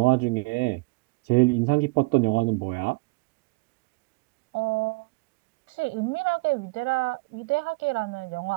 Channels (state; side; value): quieter; left; 26.2 dB